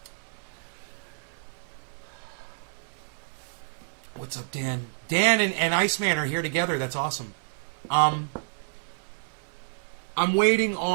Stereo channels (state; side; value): silent; left; digital silence